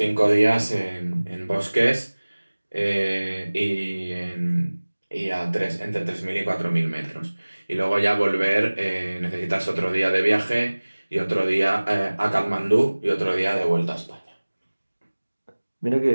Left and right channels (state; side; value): inverted; both; correlation -1.00